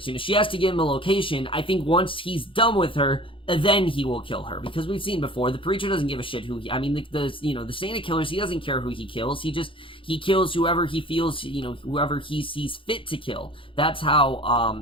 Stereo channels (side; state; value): right; late; 0.25 ms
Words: She has to give him a location. I think once he's done with her, then he will kill her, because we've seen before, the preacher doesn't give a shit who the Santa killers, he doesn't care who he kills. He kills whoever he feels, whoever he sees fit to kill. That's